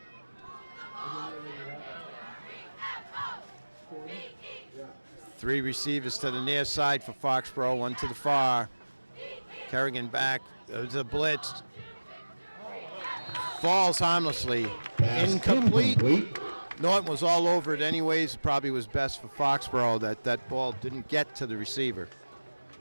Three receivers to the near side for Foxborough, 1 to the far. Kerrigan back. There's a blitz. Falls harmlessly. Incomplete. Norton was all over it anyways. Probably was best for Foxborough that ball didn't get to the receiver.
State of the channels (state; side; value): inverted; both; correlation -1.00